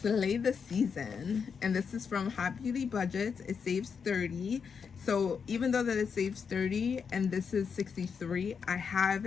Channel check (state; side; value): quieter; right; 6.2 dB